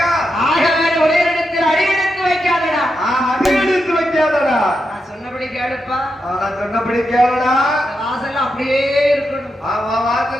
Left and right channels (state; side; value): normal; both; correlation 0.85